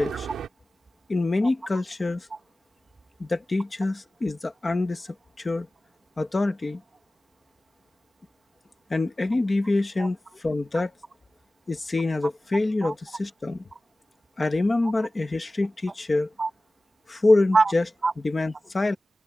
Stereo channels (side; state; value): both; normal; correlation 0.97